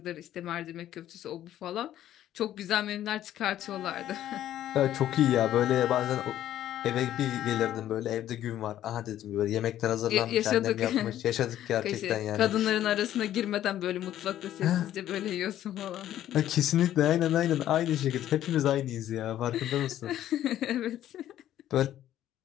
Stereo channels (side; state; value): right; quieter; 12.2 dB